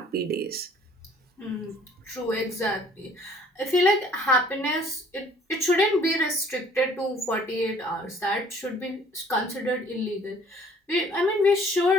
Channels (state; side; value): normal; both; correlation 0.56